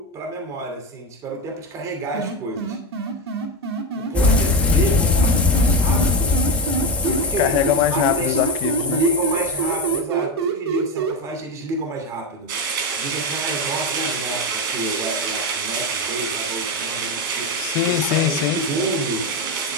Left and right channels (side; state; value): both; normal; correlation 0.14